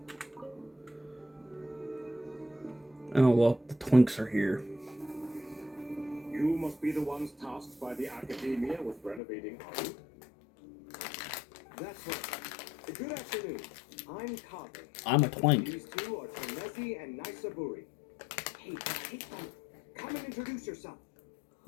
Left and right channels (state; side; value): drops out; right; at 9.2 s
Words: Oh, well, the Twinks are here. You must be the ones tasked by the Academia with renovating art. That's right. Good afternoon. I'm Kage. I'm a Twink. These two are Tanezi and Naisaburi. Hey, come and introduce yourself.